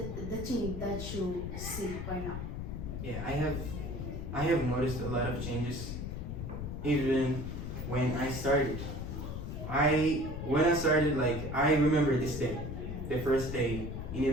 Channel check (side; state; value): left; noise; rumble, 5 dB below the sound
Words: thing that you see right now? Yeah, I have noticed a lot of changes even when I started. When I started, like I remember this day, the first day in